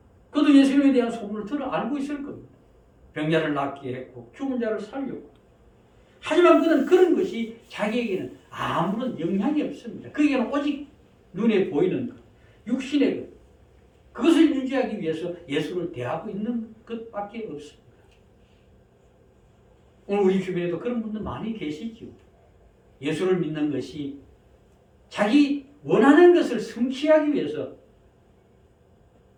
그도 예수님에 대한 소문을 알고 있을 겁니다. 병자를 낫게 했고 죽은 자를 살렸고. 하지만 그는 그런 것이 자기에게는 아무런 영향이 없습니다. 그에게는 오직 눈에 보이는 것, 육신의 것, 그것을 유지하기 위해서 예수를 대하고 있는 것밖에 없습니다. 오늘 우리 주변에도 그런 분들 많이 계시죠. 예수를 믿는 것이 자기 원하는 것을 성취하기 위해서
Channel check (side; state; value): both; identical; correlation 1.00